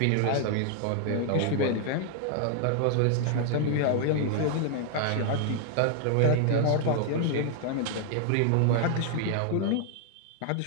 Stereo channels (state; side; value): different; both; correlation 0.00